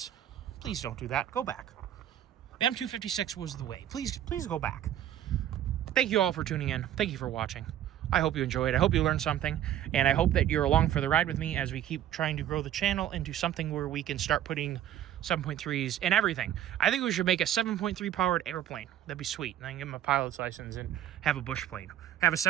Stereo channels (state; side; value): quieter; left; 11.4 dB